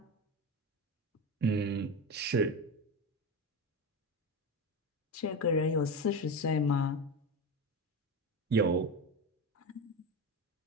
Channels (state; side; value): normal; both; correlation 0.20